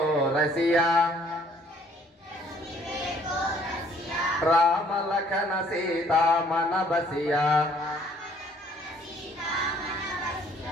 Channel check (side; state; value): both; normal; correlation 0.60